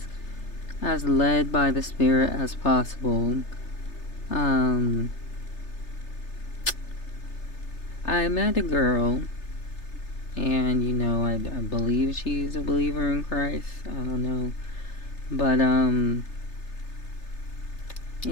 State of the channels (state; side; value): late; right; 3.3 ms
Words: as led by the Spirit as possible. Um, I met a girl, and I believe she's a believer in Christ. I don't know. But,